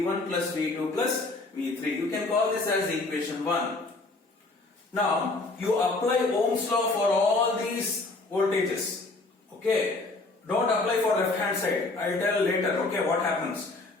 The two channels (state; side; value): quieter; right; 3.2 dB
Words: plus V2 plus V3. You can call this as equation 1. Now, you apply Ohm's law for all these voltages. Okay? Don't apply for left hand side. I'll tell later, okay, what happens.